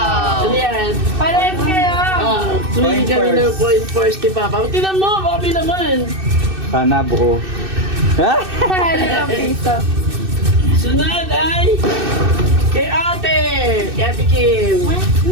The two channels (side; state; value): left; late; 2.6 ms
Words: Ano yan? Parehas kayo! Tuwing kami ng coin first ni Papa. Tingnan mo, baka naman. Sana buo. Ha? Limang piso. Sunod ay kay Ate! Kay Ate Kim.